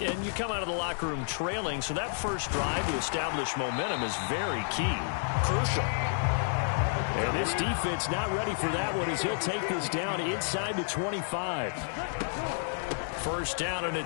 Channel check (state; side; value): silent; right; digital silence